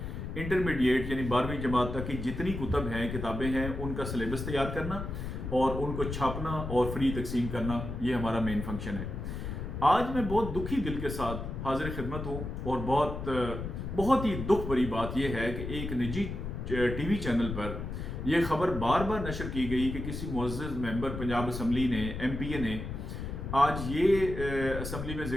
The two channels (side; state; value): left; noise; rumble, 6 dB below the sound